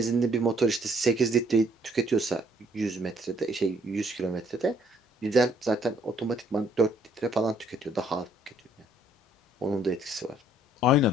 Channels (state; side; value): normal; both; correlation 0.64